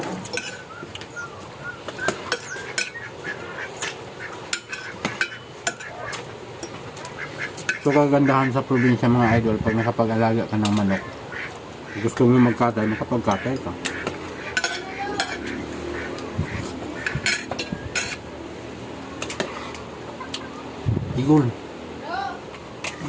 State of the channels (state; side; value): identical; both; correlation 1.00